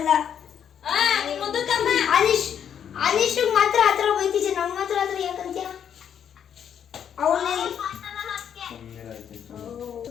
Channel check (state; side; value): quieter; right; 8.7 dB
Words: ಆಲಿಶ್ ಮಾತ್ರ ಆತರ ಬೈತಿದ್ದೆ, ನಮ್ಗೆ ಮಾತ್ರ ಆತರ ಯಾಕಂತ್ಯ?